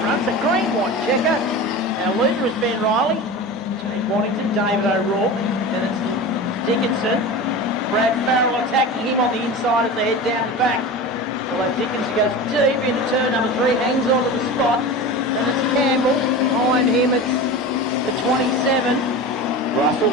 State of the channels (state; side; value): normal; both; correlation 0.30